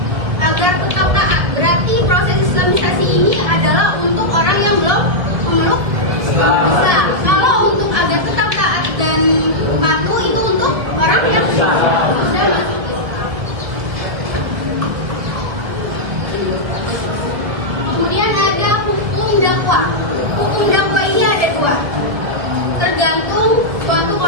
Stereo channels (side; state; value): left; late; 1.8 ms